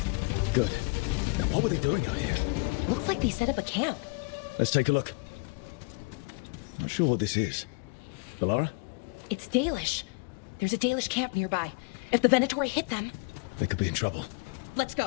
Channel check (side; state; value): right; quieter; 30.3 dB